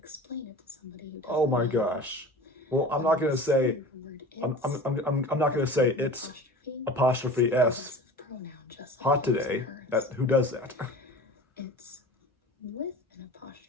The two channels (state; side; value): normal; both; correlation 0.37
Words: it to somebody who doesn't oh my gosh. Well, I'm not gonna say. I'm not gonna say it's apostrophe S. Hot today. Who does that? It's with an